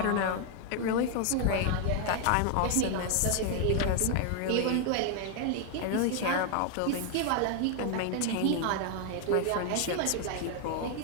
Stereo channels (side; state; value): both; different; correlation 0.00